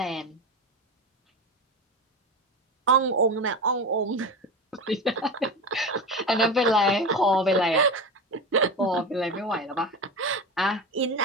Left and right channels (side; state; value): both; normal; correlation 0.24